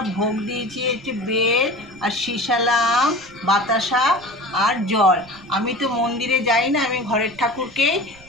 ভোগ দিয়েছি হচ্ছে বেল আর শিশালা আম, বাতাসা আর জল। আমি তো মন্দিরে যাই না, আমি ঘরের ঠাকুরকেই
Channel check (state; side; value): noise; right; rumble, 23 dB below the sound